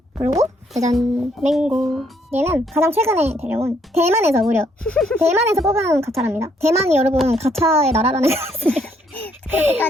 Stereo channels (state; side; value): normal; both; correlation 0.69